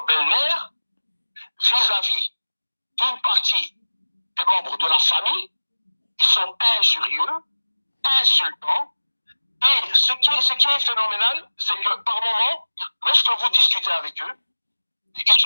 belle-mère, vis-à-vis d'une partie des membres de la famille. Ils sont injurieux, insultants. Et ce qui est phénoménal, c'est que par moment, lorsque vous discutez avec eux, ils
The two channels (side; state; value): both; inverted; correlation -1.00